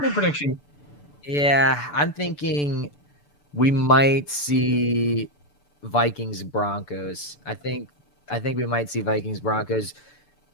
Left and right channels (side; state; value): right; late; 6.9 ms